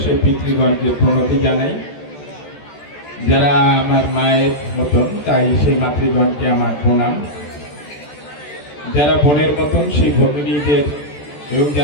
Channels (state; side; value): late; right; 14 ms